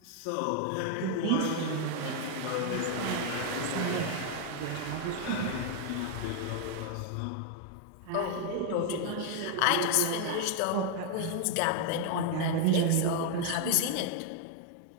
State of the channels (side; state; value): both; different; correlation 0.00